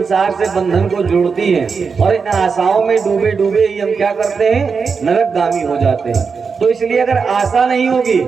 से बंधन को जोड़ती हैं, और इन आशाओं में डूबे डूबे ही हम क्या करते हैं, नरकगामी हो जाते हैं। तो इसलिए अगर आशा नहीं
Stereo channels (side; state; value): left; quieter; 5.4 dB